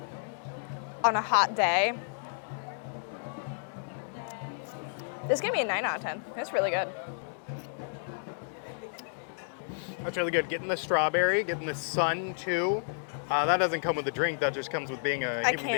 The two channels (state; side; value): silent; right; digital silence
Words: on a hot day. This gave me a 9 out of 10. It's really good. That's really good. Getting the strawberry, getting the sun too. That doesn't come with a drink. That just comes with being a human